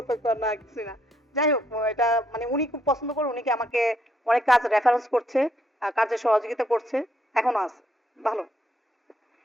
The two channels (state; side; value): normal; both; correlation 0.72